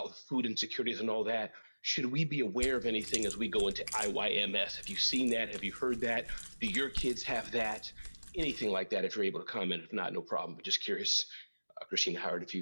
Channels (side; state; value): both; inverted; correlation -1.00